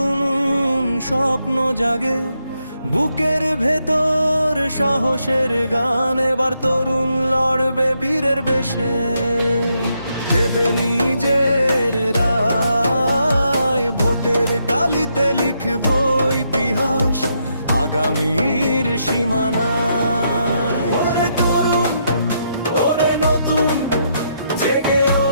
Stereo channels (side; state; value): both; inverted; correlation -0.78